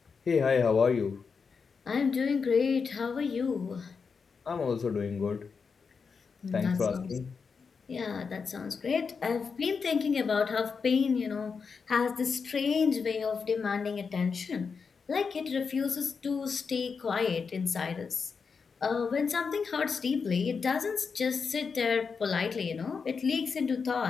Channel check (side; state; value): right; quieter; 5.4 dB